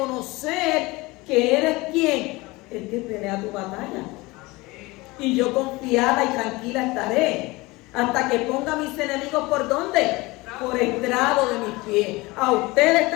que eres quien, el que pelea tu batalla. Y yo confiada y tranquila estaré hasta que ponga a mis enemigos ¿por dónde? Por estrado de mis pies. A ustedes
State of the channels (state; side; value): quieter; right; 22.4 dB